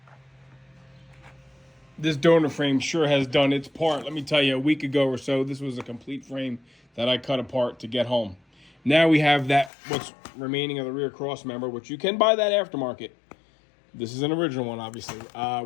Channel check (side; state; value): right; drops out; at 9.7 s